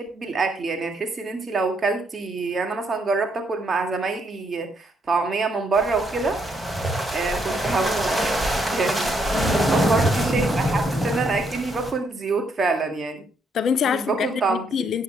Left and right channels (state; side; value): normal; both; correlation 0.74